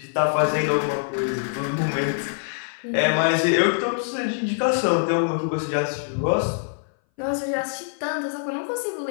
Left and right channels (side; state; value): right; silent; 59 dB below the other